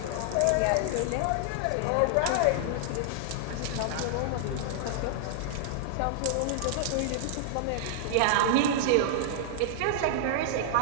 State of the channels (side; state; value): both; different; correlation -0.01